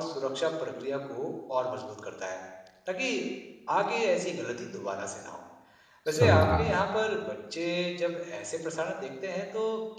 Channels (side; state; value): both; identical; correlation 1.00